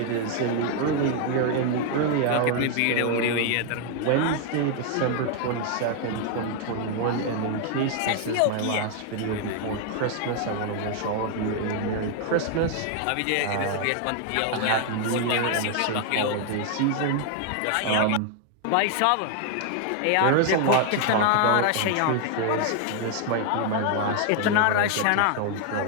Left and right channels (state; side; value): different; both; correlation 0.00